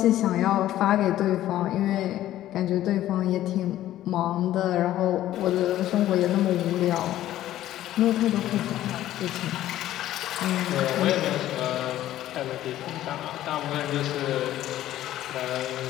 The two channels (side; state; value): right; quieter; 13.4 dB